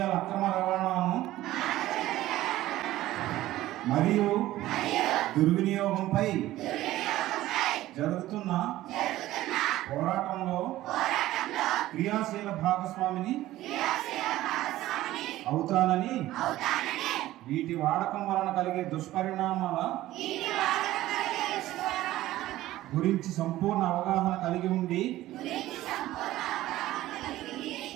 అక్రమ రవాణాను మరియు దుర్వినియోగంపై జరుగుతున్న పోరాటంలో క్రియాశీల భాగస్వామిని అవుతానని, వీటి వాడకం వలన కలిగే దుష్పరిణామాల గురించి సంపూర్ణ అవగాహన కలిగి ఉండి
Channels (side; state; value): left; quieter; 15.5 dB